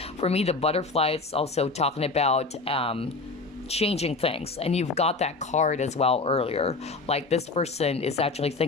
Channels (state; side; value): quieter; right; 3.7 dB